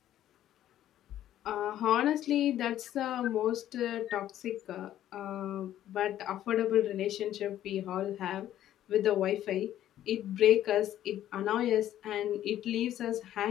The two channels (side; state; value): right; quieter; 12.1 dB